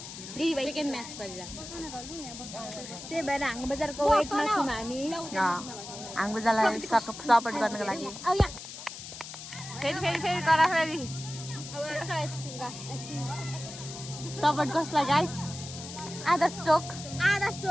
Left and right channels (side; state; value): left; noise; hiss, 11 dB below the sound